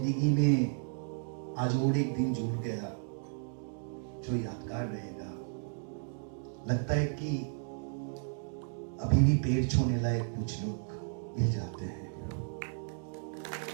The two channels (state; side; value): silent; left; digital silence